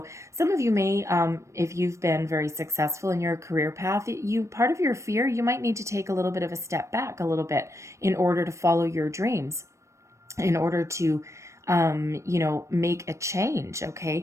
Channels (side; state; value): left; late; 0.14 ms